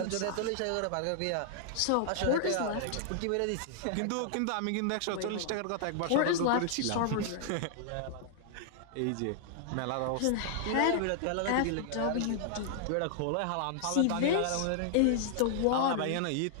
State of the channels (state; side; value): different; both; correlation -0.01